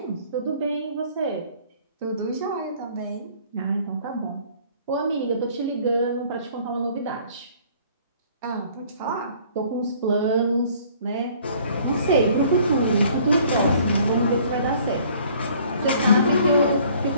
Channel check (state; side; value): inverted; both; correlation -0.56